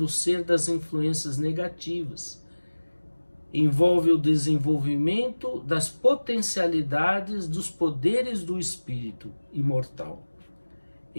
o ser das influências negativas. Envolve o desenvolvimento das potencialidades dos poderes do espírito imortal.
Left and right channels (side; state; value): both; inverted; correlation -1.00